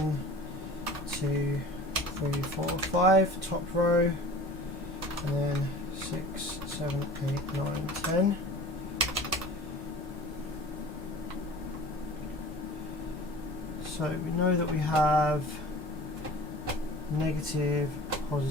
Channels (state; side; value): normal; both; correlation 0.41